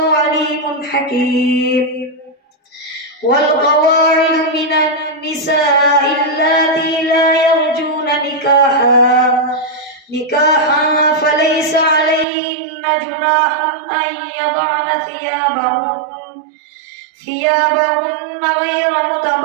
عليم حكيم والقواعد من النساء اللاتي لا يرجون نكاحا فليس عليهن جناح أن يضعن ثيابهن غير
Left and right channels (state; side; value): drops out; left; at 12.2 s